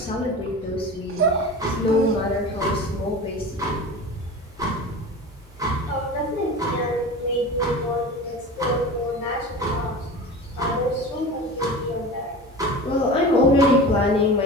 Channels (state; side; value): normal; both; correlation 0.33